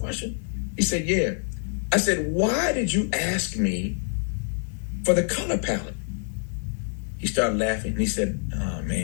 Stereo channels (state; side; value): silent; right; digital silence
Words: He said, yeah. I said, why did you ask me for the color palette? He started laughing, and he said, oh,